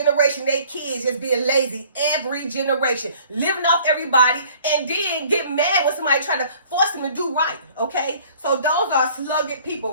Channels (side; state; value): both; inverted; correlation -0.54